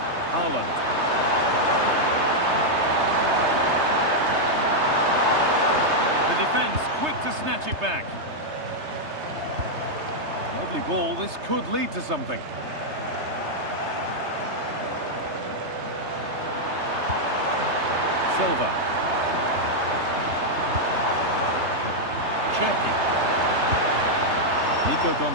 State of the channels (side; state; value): left; late; 3.3 ms